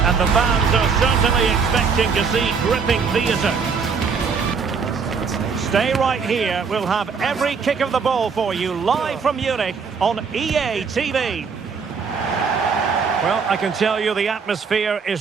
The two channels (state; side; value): quieter; left; 5.6 dB